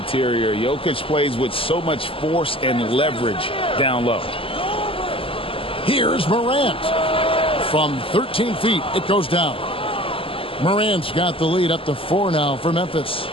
Jokic plays with so much force and leverage down low. Here's Morant. From 13 feet, it goes down. Morant's got the lead up to 4 now for Memphis.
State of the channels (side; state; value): right; late; 0.26 ms